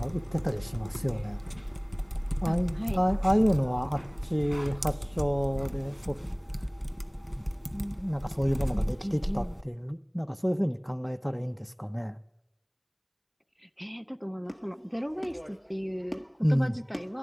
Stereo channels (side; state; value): both; identical; correlation 1.00